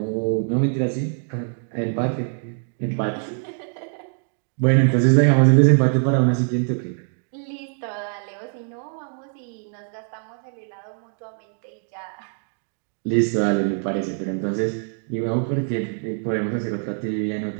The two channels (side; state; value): left; silent; 60 dB below the other